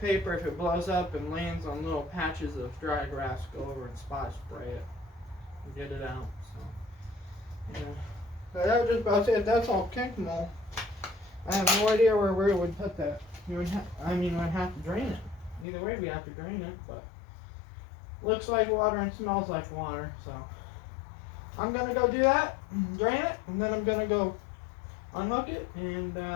if it blows up and lands on little patches of dry grass, go over and spot spray it and get it out. So yeah. So that was just about it. That's all kink mold. I have no idea where we would put that. You would we'd have to drain it. Either way, we have to drain it, but looks like water and smells like water. So I'm gonna go do that, drain it, and then I'm gonna go unhook it, and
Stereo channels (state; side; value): drops out; right; at 15.7 s